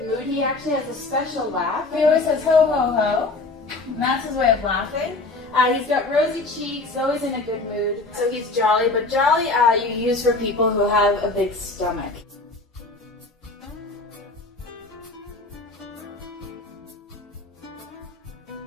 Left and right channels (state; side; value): quieter; right; 3.3 dB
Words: mood. He actually has a special laugh. He always says ho ho ho, and that's his way of laughing. He's got rosy cheeks, always in a good mood, so he's jolly. But jolly you use for people who have a big stomach.